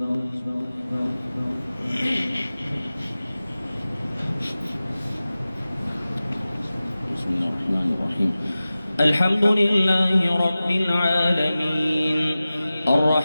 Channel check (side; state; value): both; inverted; correlation -0.96